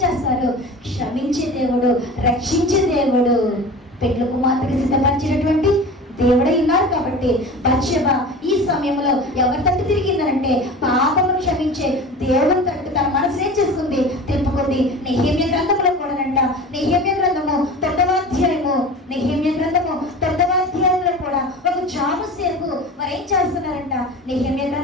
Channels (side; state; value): both; normal; correlation 0.35